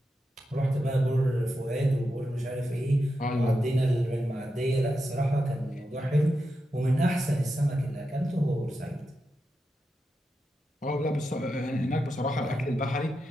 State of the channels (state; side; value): normal; both; correlation 0.88